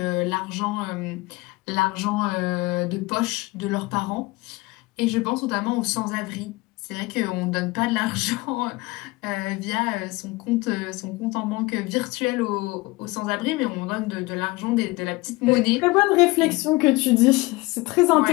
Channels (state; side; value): quieter; right; 22.3 dB